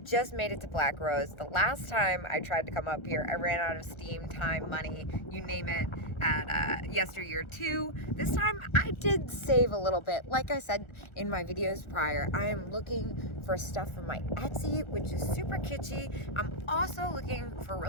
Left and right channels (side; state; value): right; late; 1.4 ms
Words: just made it to Black Rose. The last time I tried to come up here, I ran out of steam, time, money, you name it, at yesteryear too. This time I did save a little bit. Like I said in my videos prior, I am looking for stuff from my Etsy, which is super kitschy. I'm also looking for